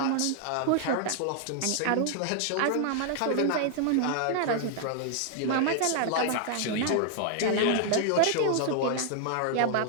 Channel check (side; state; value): both; different; correlation 0.00